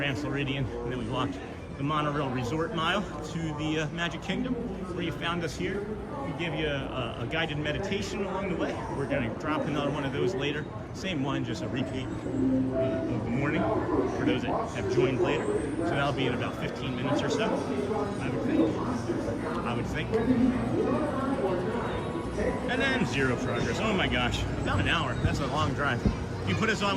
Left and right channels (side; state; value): both; identical; correlation 1.00